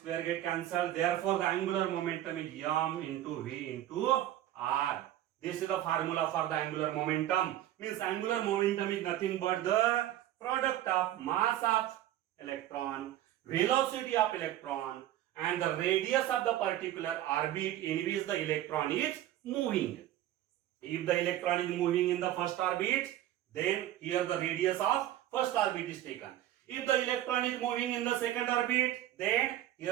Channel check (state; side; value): quieter; left; 13.2 dB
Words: get cancelled, therefore the angular momentum is m into v into r. This is the formula for the angular momentum. Means angular momentum is nothing but the product of mass of electron, velocity of electron, and the radius of the particular orbit in which the electron is moving. If the electron is moving in the first orbit, then here the radius of first orbit is taken. If the electron is moving in the second orbit, then